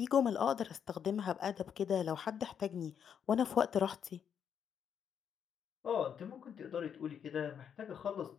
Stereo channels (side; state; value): right; quieter; 8.0 dB